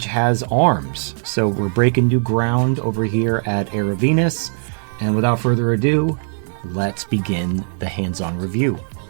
has arms. So we're breaking new ground over here at Erovenus. And without further ado, let's begin the hands-on review.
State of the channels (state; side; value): silent; left; digital silence